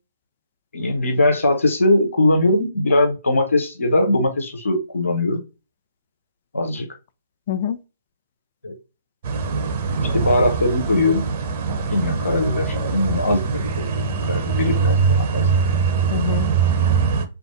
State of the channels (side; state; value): both; inverted; correlation -0.57